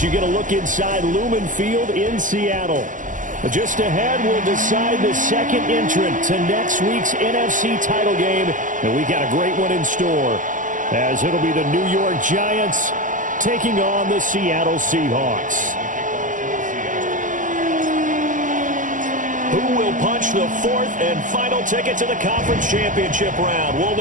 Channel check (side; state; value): left; late; 0.38 ms